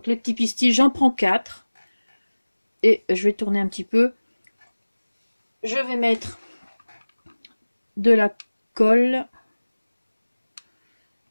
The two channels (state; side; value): inverted; both; correlation -1.00